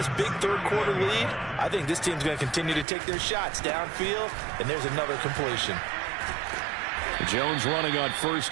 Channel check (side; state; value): left; drops out; at 2.9 s